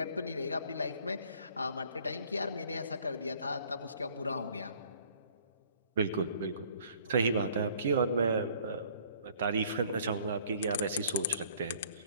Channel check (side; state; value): both; inverted; correlation -0.57